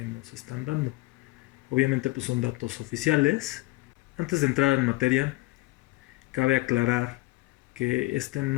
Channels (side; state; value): right; quieter; 20.6 dB